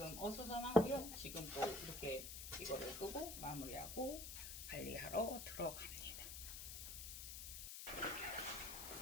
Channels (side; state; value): left; noise; hiss, 7 dB below the sound